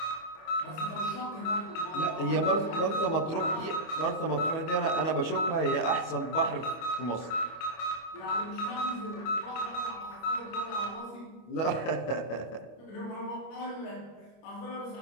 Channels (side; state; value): right; late; 25 ms